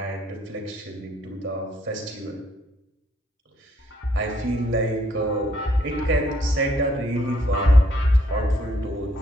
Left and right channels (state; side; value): normal; both; correlation 0.69